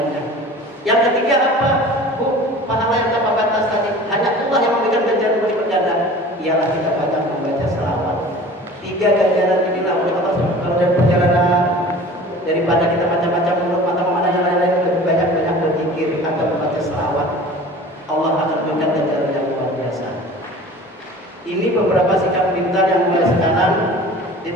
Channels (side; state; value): both; normal; correlation 0.42